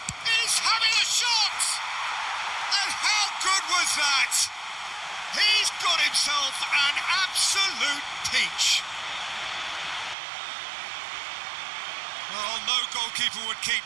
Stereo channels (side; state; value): left; drops out; at 10.2 s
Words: He's having a shot! And how good was that? He's got himself an absolute peach. Well, no goalkeeper would keep